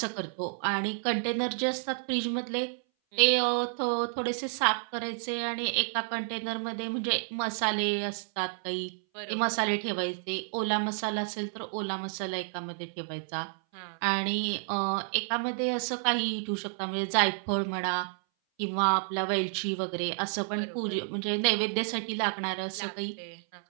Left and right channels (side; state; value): left; silent; 58 dB below the other